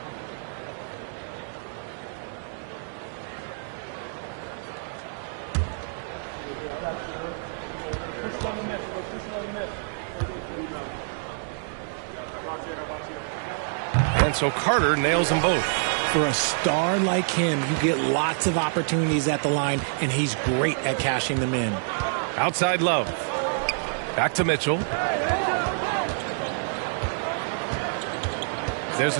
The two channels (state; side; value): silent; left; digital silence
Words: And so Carter nails them both. For a star like him, you get lots of opportunities at the line, and he's great at cashing them in. Outside Love. Back to Mitchell. There's